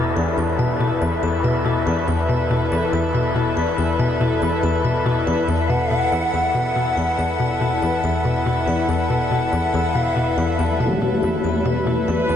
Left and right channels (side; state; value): both; normal; correlation 0.77